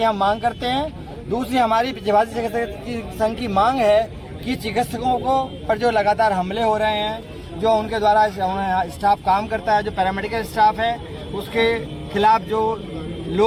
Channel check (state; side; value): identical; both; correlation 1.00